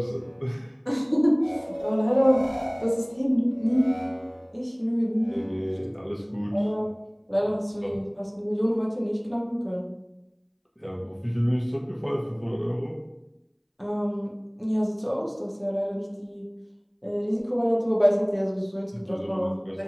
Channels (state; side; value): identical; both; correlation 1.00